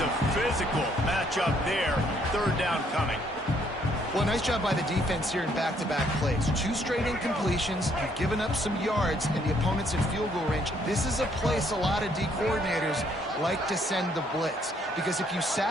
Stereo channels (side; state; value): both; normal; correlation 0.68